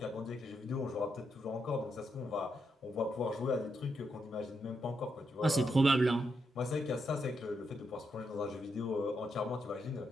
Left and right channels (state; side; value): normal; both; correlation 0.82